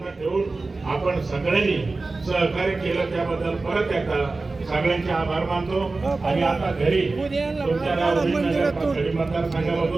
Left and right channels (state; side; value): quieter; left; 3.5 dB